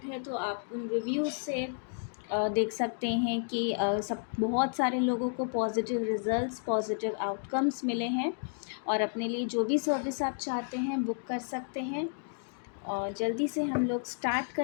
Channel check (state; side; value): silent; right; digital silence